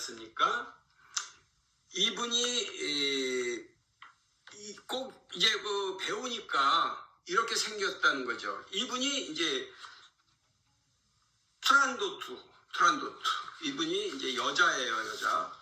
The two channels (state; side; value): identical; both; correlation 1.00